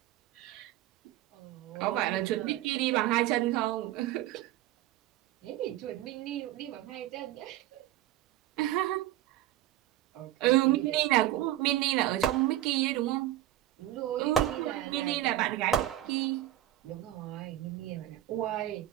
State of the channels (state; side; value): quieter; left; 14.0 dB